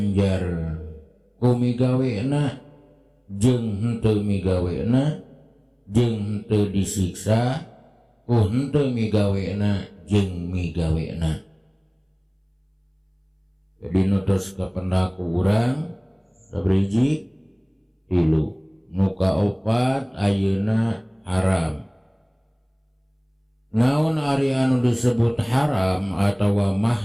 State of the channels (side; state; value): both; identical; correlation 1.00